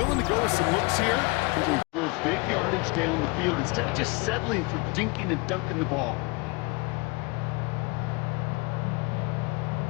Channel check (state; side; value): quieter; right; 27.7 dB